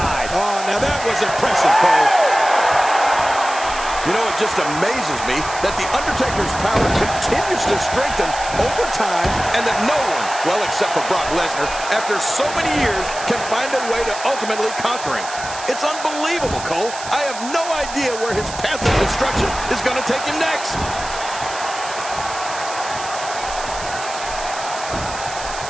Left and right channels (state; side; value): noise; right; hiss, 11 dB below the sound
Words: Oh, now that was impressive, Cole. You know, it just amazes me that The Undertaker's power continues to strengthen over time and that no one, well, except for Brock Lesnar, after so many years, can find a way to ultimately conquer him. It's unbelievable, Cole. I have no idea where his path of destruction is going to take him next.